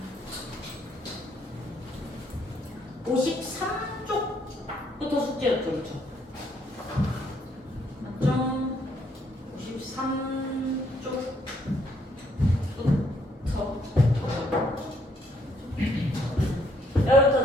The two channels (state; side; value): normal; both; correlation 0.70